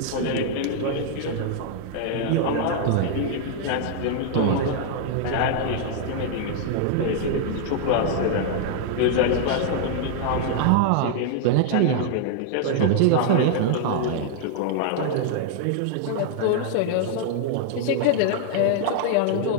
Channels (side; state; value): both; different; correlation -0.01